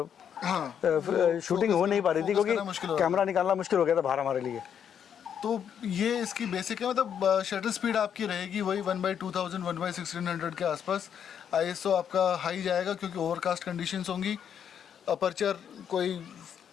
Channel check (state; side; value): quieter; right; 8.4 dB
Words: हाँ, शूटिंग हो नहीं पा रही थी, फोकस करना मुश्किल हो क्योंकि रहा था। कैमरा निकालना मुश्किल हो गया था बाहर हमारे लिए। तो ये इसकी बेसिक है, मतलब शटर स्पीड आपकी रहेगी वही 1/2000 1/1600 के आसपास। ISO आपका हाई जाएगा क्योंकि ओवरकास्ट कंडीशंस होंगी। अपर्चर कोई